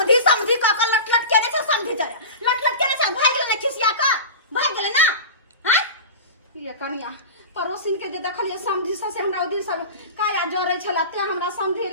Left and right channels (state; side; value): inverted; both; correlation -0.30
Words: का लट केने से समधी जरे लट केने से भाग गेले खिसिया का भाग गेले ना हैं ये कन्या पड़ोसिन के जे देखलिए समधी से हमरा दिन सब काया जरे छला ते हमरा समधी